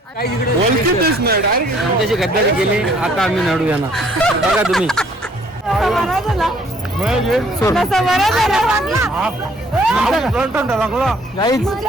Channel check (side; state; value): both; normal; correlation 0.61